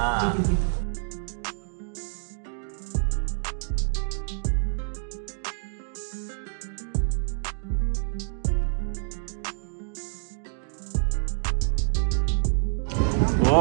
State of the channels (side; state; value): left; silent; digital silence